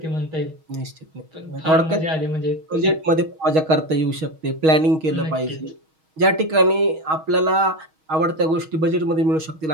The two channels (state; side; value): late; left; 6.3 ms